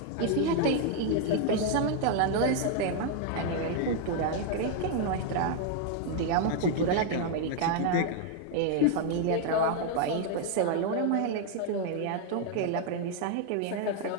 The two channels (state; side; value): different; both; correlation 0.00